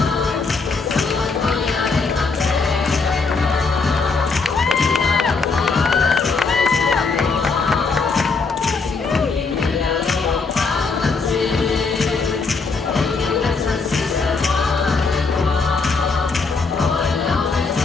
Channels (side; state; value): right; quieter; 4.4 dB